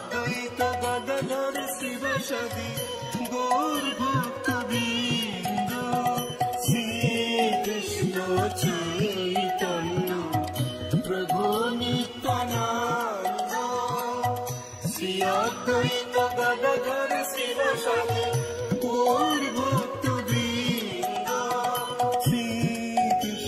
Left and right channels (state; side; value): identical; both; correlation 1.00